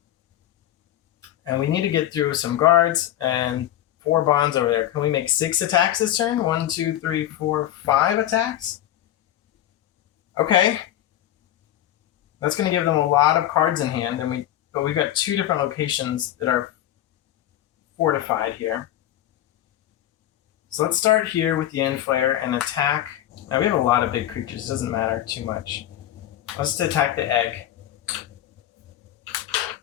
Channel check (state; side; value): quieter; right; 12.5 dB